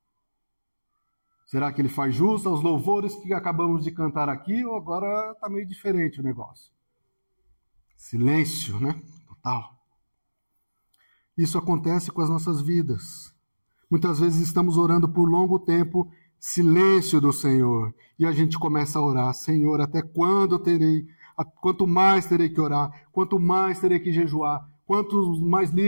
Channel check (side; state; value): both; inverted; correlation -1.00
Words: Será que Ele faz jus aos louvores que acabamos de cantar aqui? Ou agora está meio diferente o negócio? Silêncio, né? Total. Isso acontece com as nossas vidas. Muitas vezes estamos orando por longo tempo, silêncio do Senhor. E a gente começa a orar, Senhor, até quando terei, quanto mais terei que orar, quanto mais terei que jejuar, quantos mais